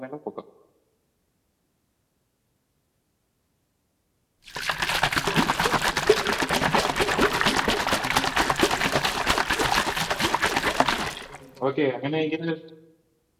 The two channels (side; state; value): both; identical; correlation 1.00